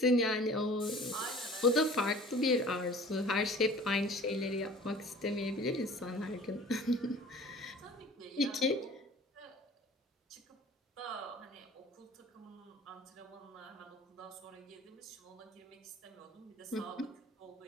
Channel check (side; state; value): both; normal; correlation 0.46